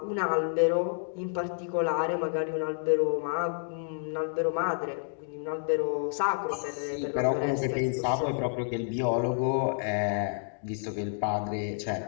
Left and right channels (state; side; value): silent; right; digital silence